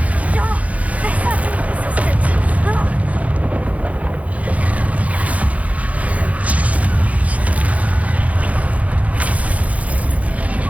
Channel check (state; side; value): late; left; 0.068 ms